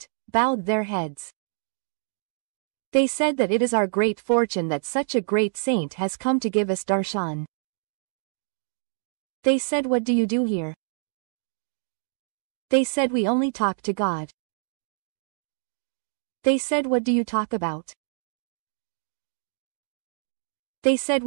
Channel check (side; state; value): left; silent; digital silence